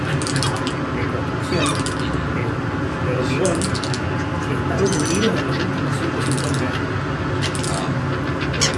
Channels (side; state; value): both; identical; correlation 1.00